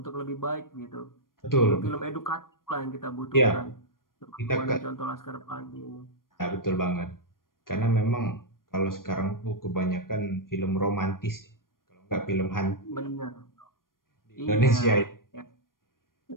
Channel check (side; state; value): right; late; 0.91 ms